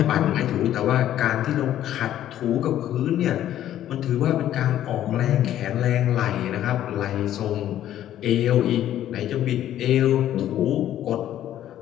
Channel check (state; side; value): quieter; right; 11.9 dB